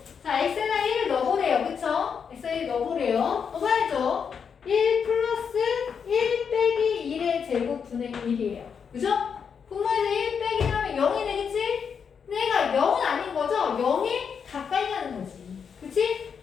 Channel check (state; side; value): quieter; right; 6.7 dB